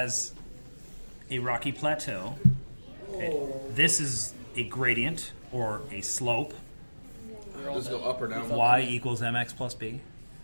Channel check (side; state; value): both; inverted; correlation -1.00